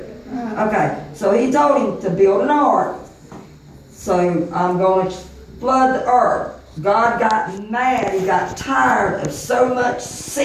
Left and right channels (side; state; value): both; identical; correlation 1.00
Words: Okay, so he told him to build an ark. So I'm going to flood the earth. God got mad. He got tired of so much